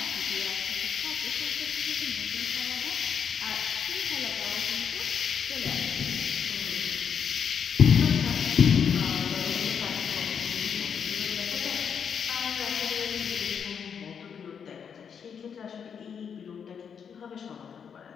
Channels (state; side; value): quieter; right; 7.2 dB